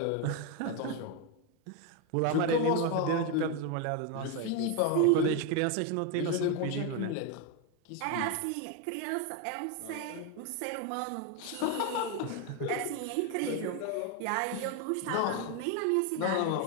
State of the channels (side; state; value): both; different; correlation 0.02